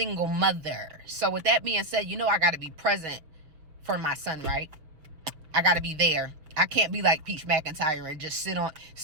mother. So with that being said, I got to be present for my son, right? I got to be there. I can't be like Peach Mcintyre and just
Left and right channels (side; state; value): left; late; 6.2 ms